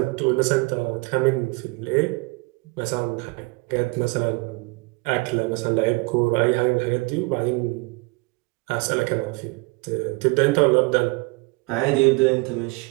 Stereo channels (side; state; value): left; quieter; 27.5 dB